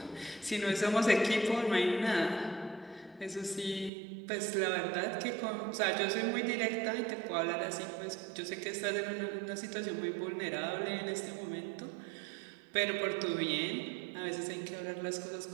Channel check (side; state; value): left; drops out; at 3.9 s